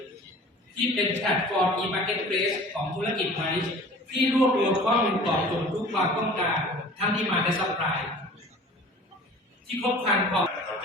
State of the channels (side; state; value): both; normal; correlation 0.44